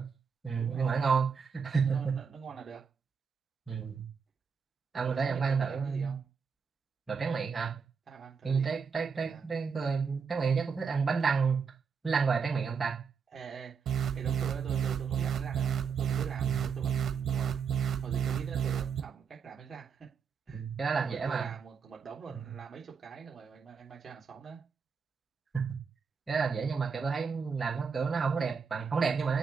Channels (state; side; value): quieter; left; 6.0 dB